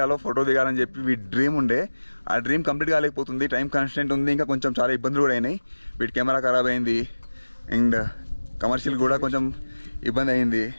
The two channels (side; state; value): both; inverted; correlation -1.00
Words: ఫోటో దిగాలని చెప్పి వీడి డ్రీమ్ ఉండే, ఆ డ్రీమ్ కంప్లీట్ కాలేకపోతుంది. టైం కాన్స్టెంట్ ఉంది, ఇంకా కొంచెం చాలా ఇబ్బందులు కూడా అయినాయి. వీడి కెమెరా ఖరాబ్ అయింది అండ్ కమర్షియల్ కూడా కొంచెం ఇబ్బంది అయింది.